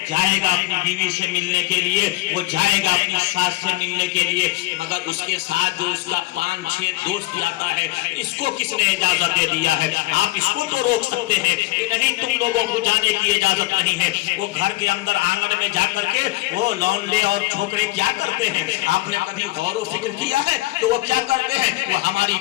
جائے گا اپنی بیوی سے ملنے کے لیے, وہ جائے گا اپنی ساس سے ملنے کے لیے, مگر اس کے ساتھ جو اس کا 5-6 دوست جاتا ہے اس کو کس نے اجازت دے دیا ہے؟ آپ اس کو تو روک سکتے ہیں کہ نہیں تم لوگوں کو جانے کی اجازت نہیں ہے. وہ گھر کے اندر آنگن میں جا کر کے وہ لونڈے اور چھوکرے کیا کرتے ہیں؟ آپ نے کبھی غور و فکر کیا ہے تو وہ کیا کرتے ہیں؟ وہ ہماری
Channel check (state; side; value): quieter; right; 19.7 dB